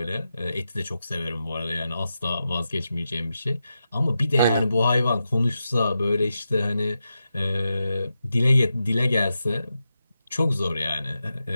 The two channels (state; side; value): inverted; both; correlation -0.88